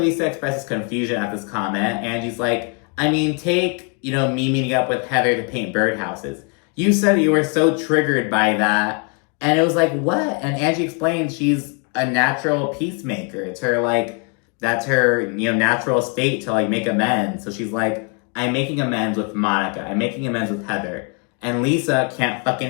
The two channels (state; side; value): quieter; right; 37.4 dB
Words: expresses confusion at this comment, Angie's like, take, me meeting up with Heather to paint birdhouses. You said you were so triggered by that. And it was like, what? And Angie explained she's a natural peacemaker. It's her, that's her, natural state to, make amends. So she's like, I'm making amends with Monica. I'm making amends with Heather. And Lisa can't